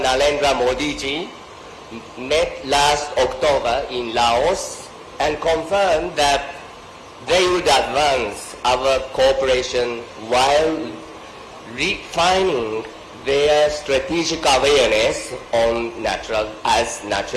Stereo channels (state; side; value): identical; both; correlation 1.00